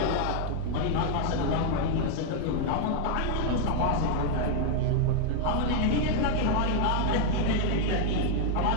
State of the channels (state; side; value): different; both; correlation 0.00